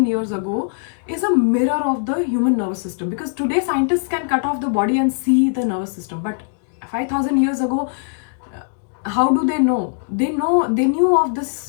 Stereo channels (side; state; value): right; silent; digital silence